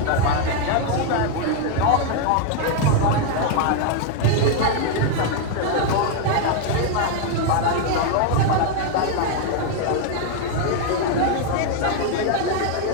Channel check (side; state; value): both; different; correlation 0.00